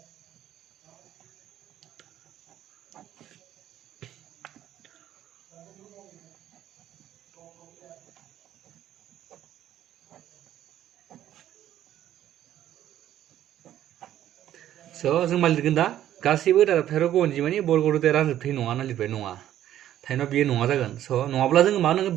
स' जों मा लिरगोन दा गासैबो दाजाबथाय रग' अनजिमानि बर्ग रोदाया रानजोबथाय नङा होनना लिरबाय नङा थारैनो बेयो नङा जागोन स' नङाब्ला जोङो मा होनांगोन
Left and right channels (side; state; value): left; quieter; 12.0 dB